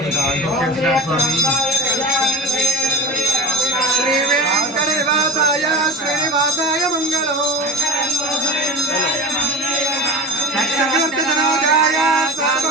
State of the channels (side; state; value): both; normal; correlation 0.32